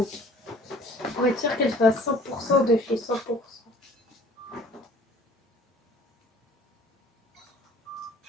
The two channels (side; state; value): both; normal; correlation 0.51